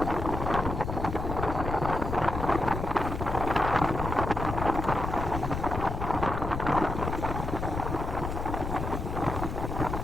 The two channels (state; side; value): noise; left; rumble, 4 dB below the sound